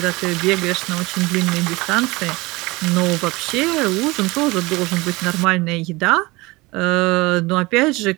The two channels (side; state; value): left; quieter; 22.6 dB